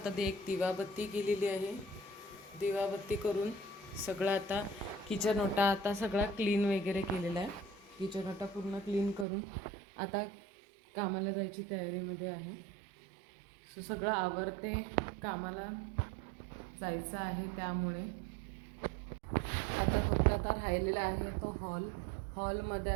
ते एक दिवाबत्ती केलेली आहे. दिवाबत्ती करून सगळं आता किचन ओटा आता सगळा क्लीन वगैरे केलेला आहे. किचन ओटा पूर्ण क्लीन करून आता कामाला जायची तयारीमध्ये आहे. सगळं आवरते, कामाला जायचं आहे. त्यामुळे आता फक्त आता राहिलेला आहे तो हॉलमध्ये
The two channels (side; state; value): left; drops out; at 9.2 s